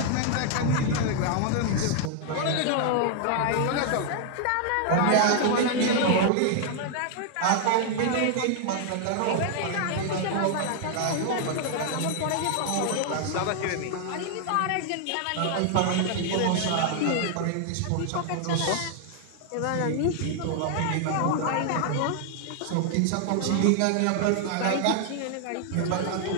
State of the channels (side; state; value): both; different; correlation 0.00